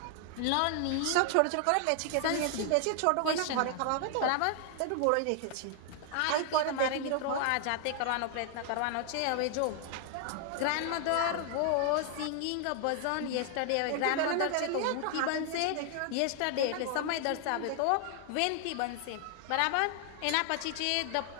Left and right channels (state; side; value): different; both; correlation 0.00